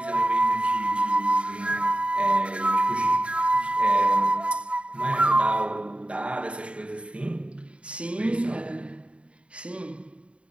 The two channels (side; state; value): left; late; 0.060 ms